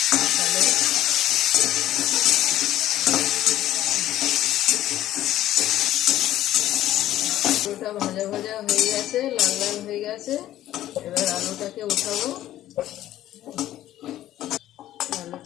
তাহলে আলুটা ভাজা ভাজা হয়ে গেছে, লাল লাল হয়ে গেছে। এবার আলুটাকে উঠাবো।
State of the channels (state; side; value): quieter; right; 13.4 dB